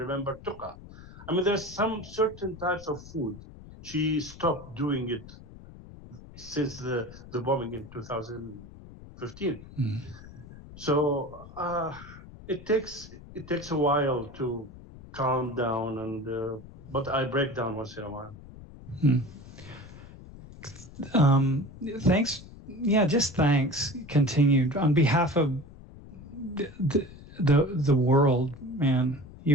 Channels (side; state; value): left; noise; rumble, 17 dB below the sound